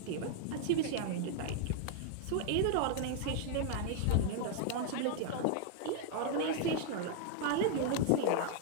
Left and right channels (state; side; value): different; both; correlation 0.00